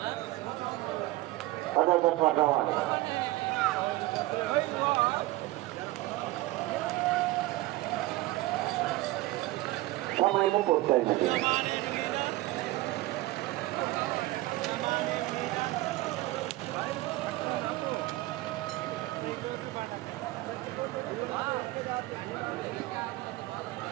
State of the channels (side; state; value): left; quieter; 18.5 dB